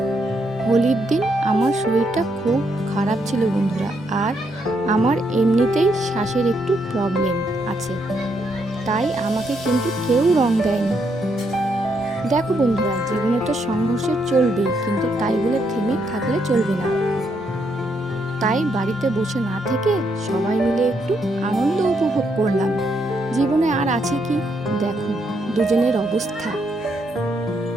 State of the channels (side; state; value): both; normal; correlation 0.76